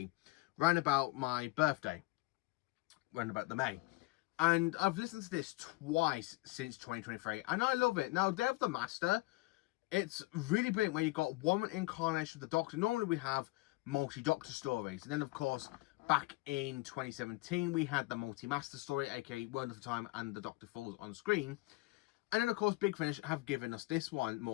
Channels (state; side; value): quieter; right; 22.0 dB